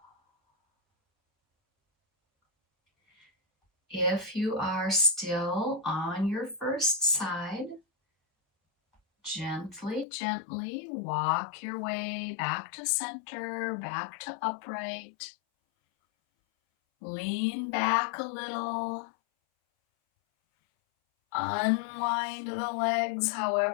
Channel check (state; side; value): drops out; right; at 10.1 s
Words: If you are still on your first side, gently, gently walk your way back to center, back to upright. Lean back a little. Unwind the legs